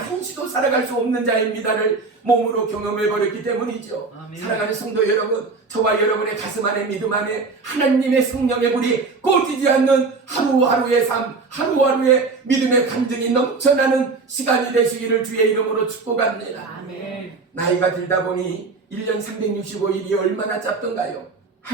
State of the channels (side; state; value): left; quieter; 4.2 dB